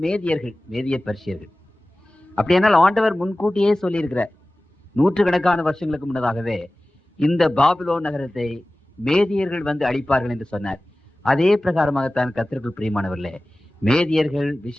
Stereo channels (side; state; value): both; normal; correlation 0.97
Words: மேதியர்கள், மேதிய பர்ஷியர்கள். அப்படியானால் ஆண்டவர் முன்கூட்டியே சொல்லியிருக்கிறார். 100 கணக்கான வருஷங்களுக்கு முன்னதாகவே இந்த பாபிலோன் நகரத்தை மேதியர்கள் வந்து அழிப்பார்கள் என்று சொன்னார். அதே பிரகாரமாகத்தான் கர்த்தருக்குள் பிரியமானவர்களே, மேதியர்கள்